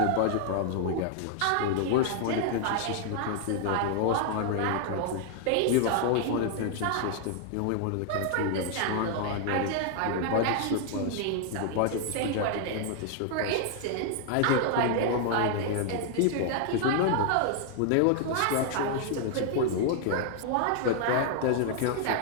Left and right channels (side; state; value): both; different; correlation 0.00